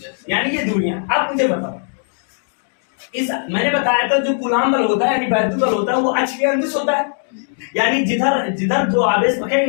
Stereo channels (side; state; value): right; silent; digital silence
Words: यानी ये दूरियां। अब मुझे बताओ, इस मैंने बताया था जो कूलाम बल होता है यानी वैद्युत बल होता है वो अक्ष के अनुदिश होता है, यानी जिधर जिधर जो आवेश